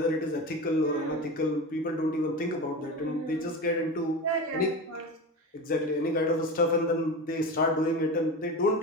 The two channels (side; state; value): both; normal; correlation 0.26